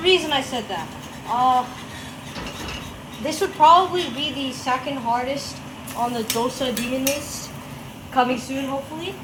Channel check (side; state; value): both; identical; correlation 1.00